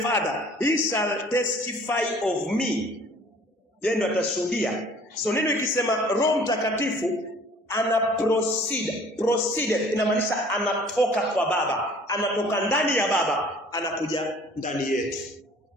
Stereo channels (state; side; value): normal; both; correlation 0.52